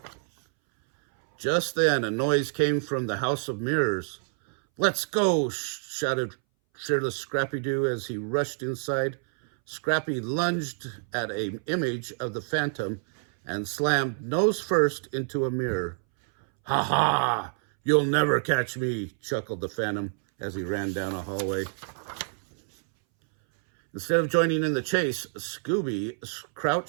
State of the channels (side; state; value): left; silent; 60 dB below the other